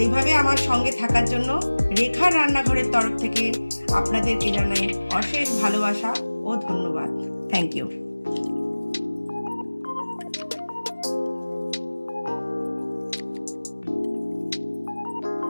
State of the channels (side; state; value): both; inverted; correlation -1.00